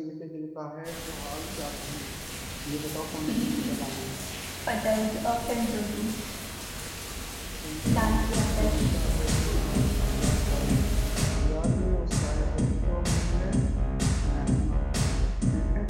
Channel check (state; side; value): identical; both; correlation 1.00